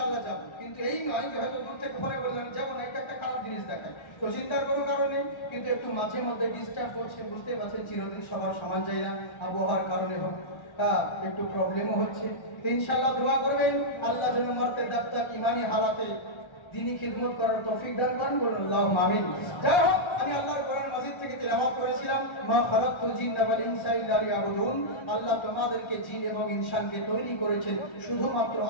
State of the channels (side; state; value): right; late; 1.3 ms